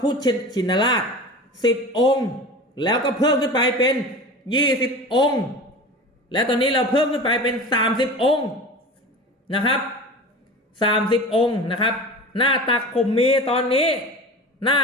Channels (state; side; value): normal; both; correlation 0.34